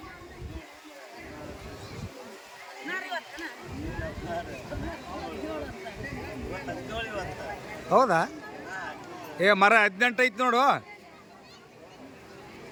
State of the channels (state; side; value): identical; both; correlation 1.00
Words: ಹೌದಾ? ಮರ 18 ಐತಿ ನೋಡು.